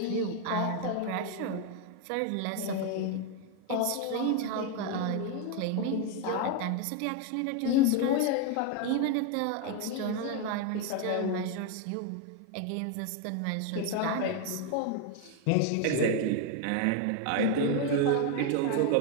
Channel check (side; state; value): both; different; correlation 0.01